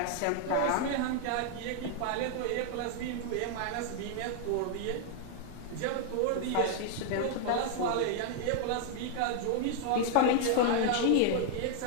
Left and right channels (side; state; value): both; different; correlation 0.00